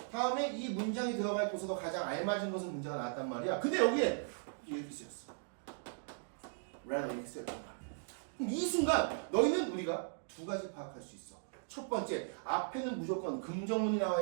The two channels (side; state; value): left; silent; digital silence